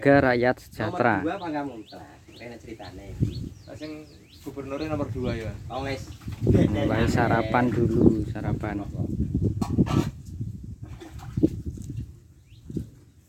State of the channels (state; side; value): identical; both; correlation 1.00